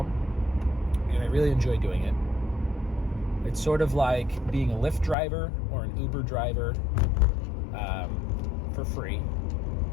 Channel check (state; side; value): drops out; right; at 5.2 s